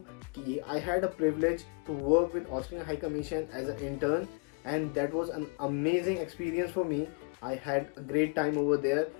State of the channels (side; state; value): right; quieter; 34.2 dB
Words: कि I had a privilege to work with Austrian High Commission as a intern and that was an amazing experience for me. I had a great time over there